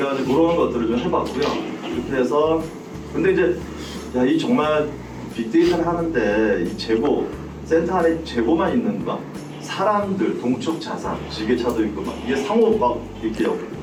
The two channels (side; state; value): both; identical; correlation 1.00